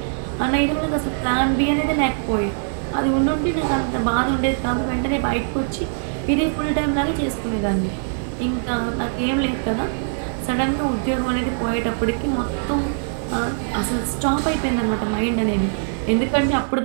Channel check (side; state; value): left; silent; digital silence